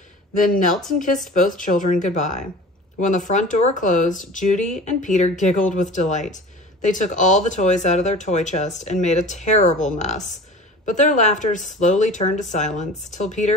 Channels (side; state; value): both; normal; correlation 0.39